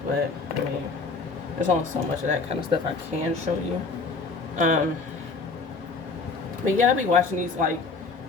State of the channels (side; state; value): right; quieter; 4.1 dB